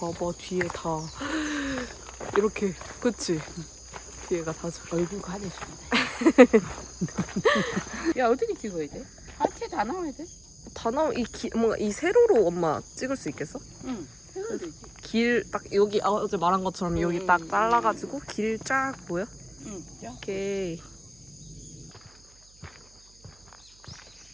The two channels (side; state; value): right; noise; hum, 28 dB below the sound